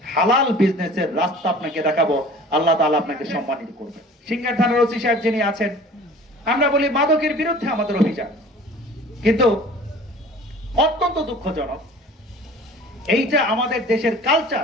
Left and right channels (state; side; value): normal; both; correlation 0.45